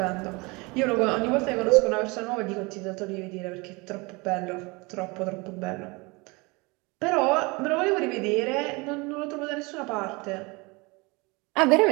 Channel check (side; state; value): left; quieter; 26.3 dB